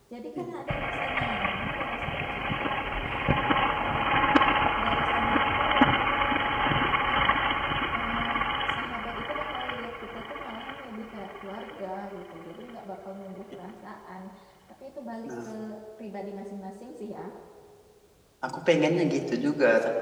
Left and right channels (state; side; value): identical; both; correlation 1.00